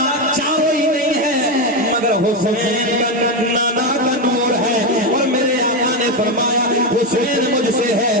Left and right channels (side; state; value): both; normal; correlation 0.10